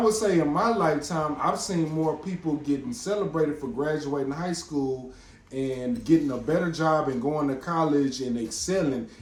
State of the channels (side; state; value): both; identical; correlation 1.00